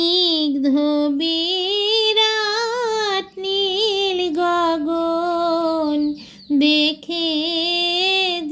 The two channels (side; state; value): both; identical; correlation 1.00